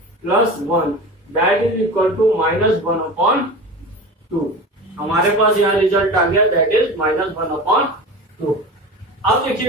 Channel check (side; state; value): both; normal; correlation 0.32